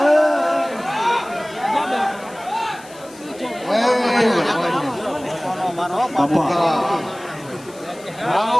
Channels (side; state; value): left; noise; hiss, 22 dB below the sound